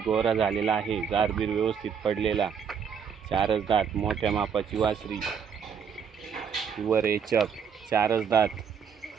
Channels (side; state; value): left; quieter; 7.0 dB